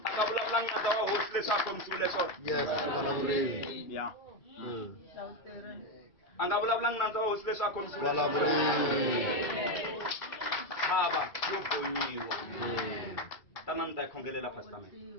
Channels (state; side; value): late; right; 2.3 ms